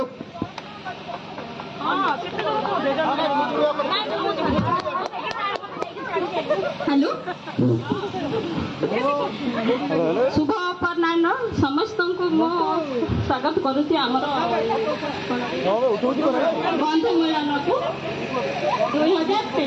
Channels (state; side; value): identical; both; correlation 1.00